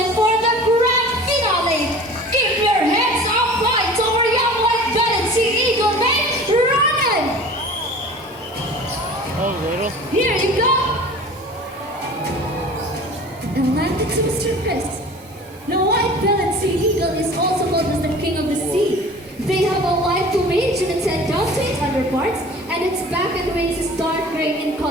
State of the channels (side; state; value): both; normal; correlation 0.42